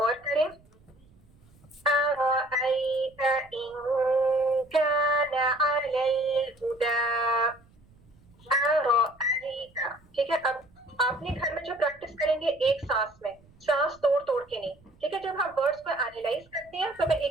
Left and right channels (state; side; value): noise; right; rumble, 29 dB below the sound